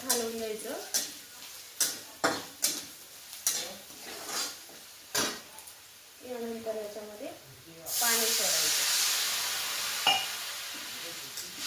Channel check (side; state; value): both; identical; correlation 1.00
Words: हलवून द्यायचं. यानंतर याच्यामध्ये पाणी सोडायचं.